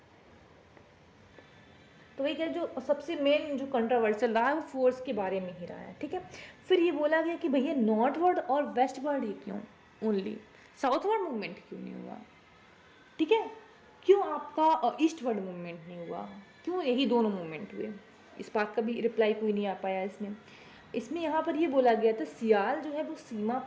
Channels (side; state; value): both; identical; correlation 1.00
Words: तो वही क्या, जो सबसे मेन जो कंट्रोवर्शियल रहा है वो फोर्स के बारे में ही रहा है, ठीक है। फिर ये बोला गया कि भैया नॉर्थवर्ड और वेस्टवर्ड ही क्यों, ओनली साउथवर्ड मूवमेंट क्यों नहीं हुआ, ठीक है। क्यों आपका ईस्टवर्ड मूवमेंट नहीं हुआ, क्यों यही दोनों मूवमेंट हुए। इस बात का भी रिप्लाई कोई नहीं आ पाया इसमें यहाँ पर ये बोला गया था सियाल जो है वो सीमा